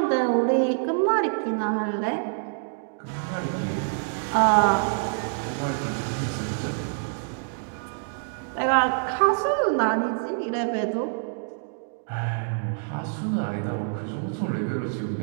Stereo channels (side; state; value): left; silent; digital silence